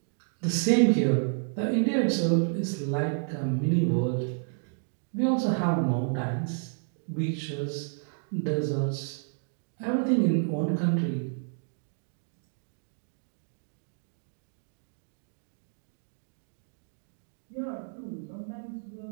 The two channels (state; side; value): silent; left; 58 dB below the other